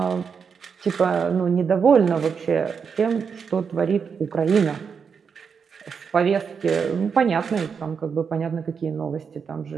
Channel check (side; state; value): left; quieter; 6.2 dB